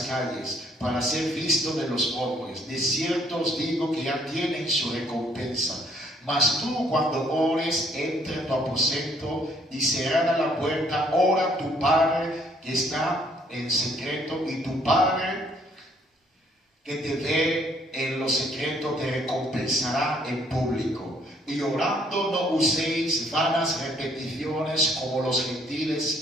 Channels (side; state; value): both; normal; correlation 0.66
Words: calles, para ser visto de los hombres. De cierto os digo que ya tienen su recompensa. Mas tú, cuando ores, entra en tu aposento y cerrada la puerta, ora a tu Padre que está en secreto, y tu Padre que te ve en lo secreto te recompensará en público. Y orando no uséis vanas repeticiones como los gentiles